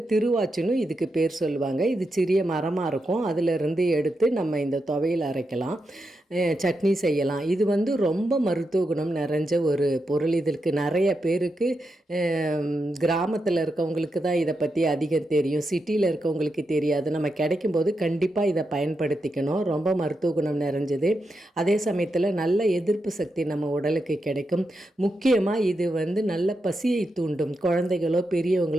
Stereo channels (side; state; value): both; normal; correlation 0.86